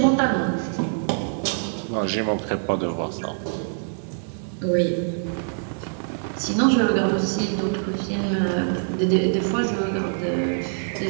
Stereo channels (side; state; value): left; silent; 62 dB below the other